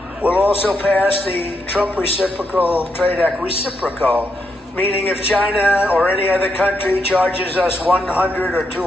We'll also pass the Trump Reciprocal Trade Act, reciprocal, meaning if China or any other country charges us 100 or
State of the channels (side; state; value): both; normal; correlation 0.81